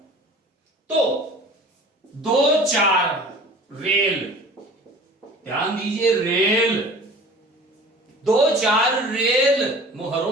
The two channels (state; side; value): normal; both; correlation 0.43